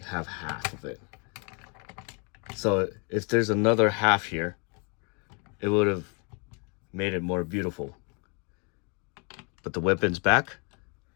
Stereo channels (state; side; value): quieter; right; 34.4 dB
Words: half of it. So if there's another half here, it would have made it more beautiful. Put the weapons back.